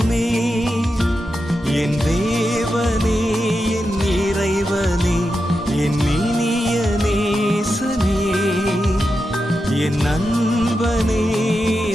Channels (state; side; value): normal; both; correlation 0.88